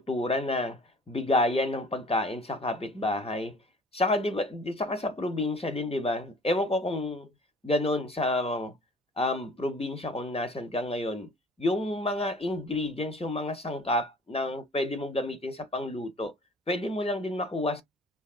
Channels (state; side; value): normal; both; correlation 0.50